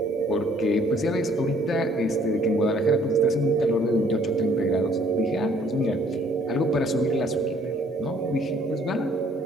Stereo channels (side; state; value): both; normal; correlation 0.61